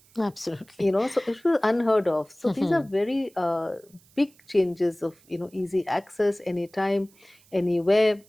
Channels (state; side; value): noise; right; hiss, 30 dB below the sound